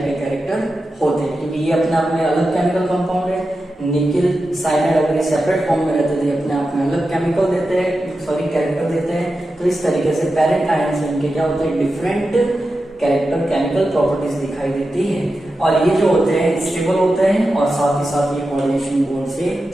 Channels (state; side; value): normal; both; correlation 0.91